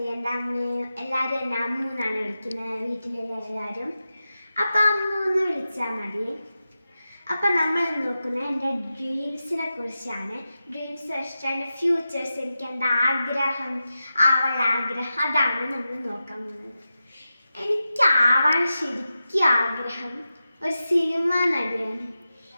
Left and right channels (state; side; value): inverted; both; correlation -0.92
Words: എൻ്റെ അമ്മയും എല്ലാവരും എന്നെ അമ്മു എന്നാണ് വിളിക്കുന്നത്, വീട്ടിലുള്ള എല്ലാവരും. അപ്പം അമ്മു എന്ന് വിളിച്ചാൽ മതി. അപ്പം നമ്മൾ നോക്കുന്നത് എൻ്റെ ഡ്രീംസിനെ കുറിച്ചാണ്. ഡ്രീംസ് വെച്ചിട്ട് എൻ്റെ ഫ്യൂച്ചേഴ്സ്, എനിക്ക് എൻ്റെ ആഗ്രഹം, ആഗ്രഹം, അതാണ് നമ്മൾ നോക്കാൻ പോകുന്നത്. എനിക്ക് ശരിക്കും ആഗ്രഹം ഒരു സിനിമ നടിയാണ്.